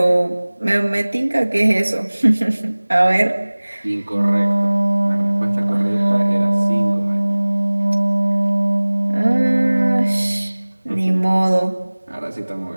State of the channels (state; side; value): inverted; both; correlation -1.00